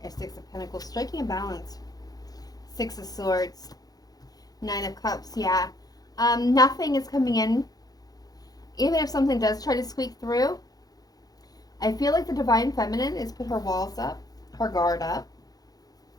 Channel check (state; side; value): late; right; 0.18 ms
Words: Six of Pentacles. Striking a balance. Six of Swords. Nine of Cups. Yeah. Nothing is coming in. Even if something does try to squeak through, I feel like the divine feminine is put her walls up, her guard up.